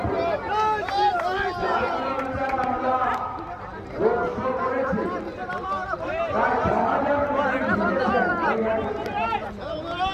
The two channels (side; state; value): both; identical; correlation 1.00